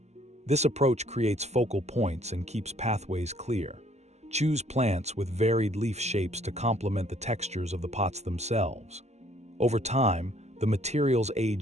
This approach creates focal points and keeps pathways clear. Choose plants with varied leaf shapes to complement the textures of the pots themselves. Over time, the materials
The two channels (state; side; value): late; left; 0.32 ms